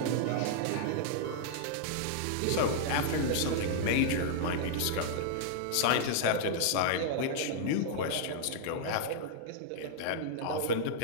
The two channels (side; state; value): both; different; correlation -0.01